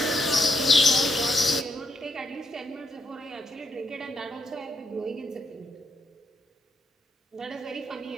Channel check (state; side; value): normal; both; correlation 0.79